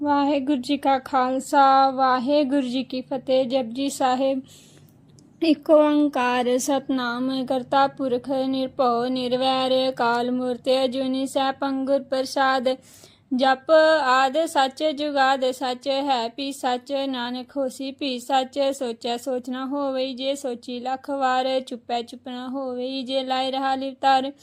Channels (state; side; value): identical; both; correlation 1.00